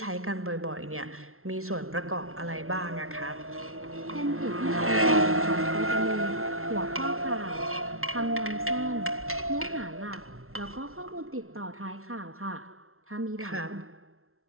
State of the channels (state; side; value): late; left; 0.62 ms